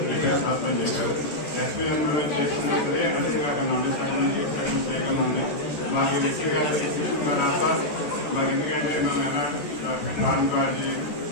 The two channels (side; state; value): right; late; 14 ms